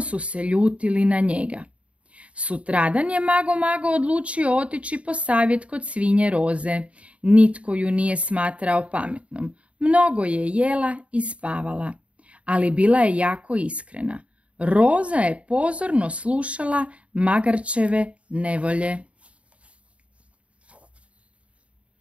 su se ljutili na njega. Sutradan je Mago, Mago odlučio otići po savjet kod svinje Roze. Nitko ju nije smatrao pametnom, mnogo je jela i spavala, ali bila je jako iskrena. Roza je pozorno slušala magarčeve nevolje.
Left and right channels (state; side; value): late; left; 0.063 ms